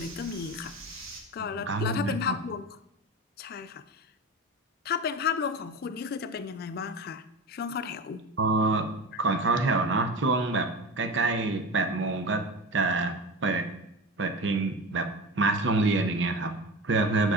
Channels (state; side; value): normal; both; correlation 0.27